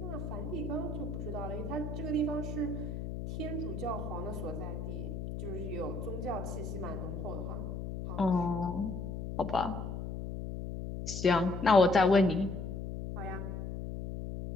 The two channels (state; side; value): noise; left; hum, 5 dB below the sound